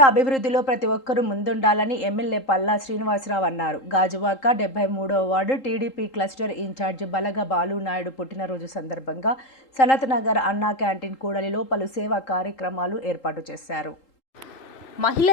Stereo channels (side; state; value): right; late; 3.8 ms